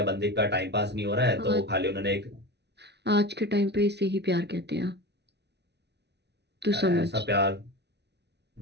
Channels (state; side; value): late; left; 0.49 ms